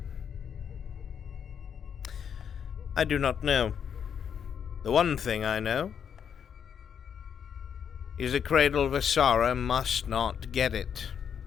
I do not know. The one thing I know is the Cradle of Asara must not get it.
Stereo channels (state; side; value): quieter; right; 7.8 dB